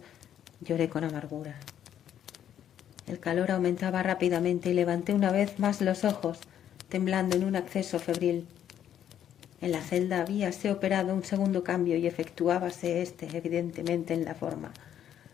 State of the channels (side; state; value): right; quieter; 10.2 dB